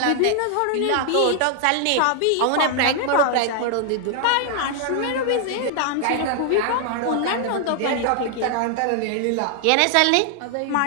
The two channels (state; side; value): different; both; correlation 0.00